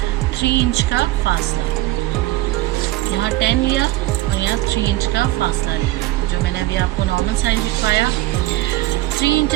3 इंच का फासला। यहाँ 10 लिया और यहाँ 3 इंच का फासला लिया, जो मैंने अभी आपको नॉर्मल साइज दिखाया। 3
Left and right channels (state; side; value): quieter; left; 17.3 dB